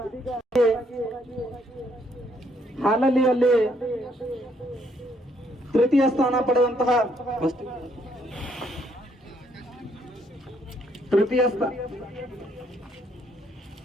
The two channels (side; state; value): both; normal; correlation 0.70